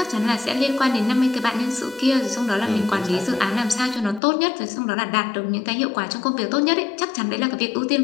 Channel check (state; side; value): drops out; right; at 4.2 s